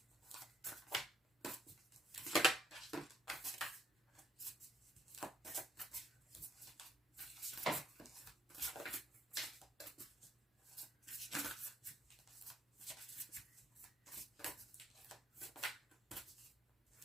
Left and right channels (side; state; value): both; normal; correlation 0.68